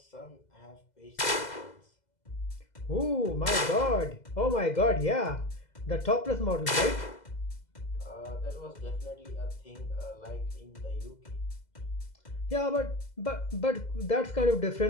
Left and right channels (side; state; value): right; late; 2.0 ms